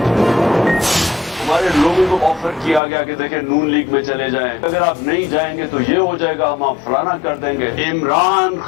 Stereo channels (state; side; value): drops out; right; at 2.8 s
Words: हमारे लोगों को ऑफर किया गया कि देखें नून लीग में चले जाएं, अगर आप नहीं जाएंगे तो ये हो जाएगा, हम आप फलाना कर देंगे। इमरान